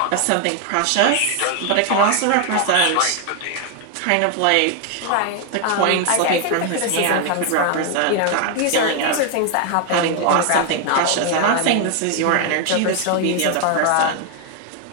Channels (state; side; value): different; both; correlation 0.01